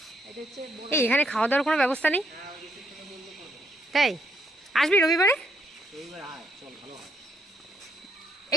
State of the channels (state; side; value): normal; both; correlation 0.74